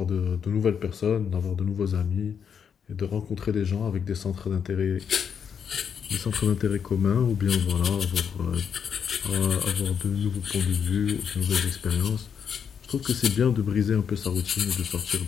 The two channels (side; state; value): right; quieter; 7.3 dB